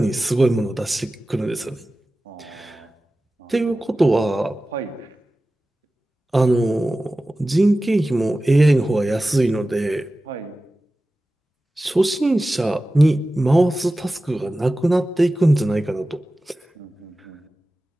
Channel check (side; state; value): both; normal; correlation 0.96